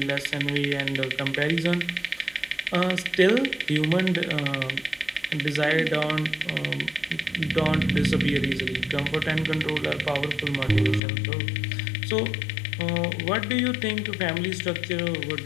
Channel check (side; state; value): right; drops out; at 11.0 s